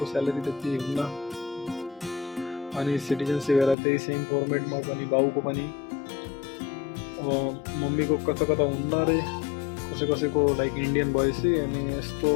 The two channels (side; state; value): right; drops out; at 3.8 s